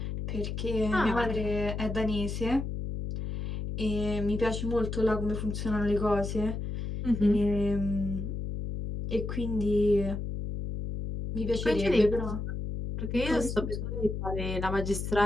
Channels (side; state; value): left; noise; hum, 4 dB below the sound